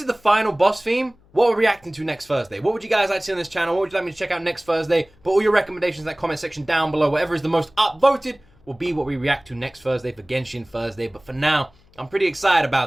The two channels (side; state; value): left; noise; hum, 30 dB below the sound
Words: the final boss theme, what we're reacting to next Thursday? What would you guys like to see on this channel? What would you like me to check out next Thursday? Put all your recommendations in that comment section down below. Whatever is the most upvoted will be what we react to next Thursday for Genshin Thursday. But for now, I'm pretty excited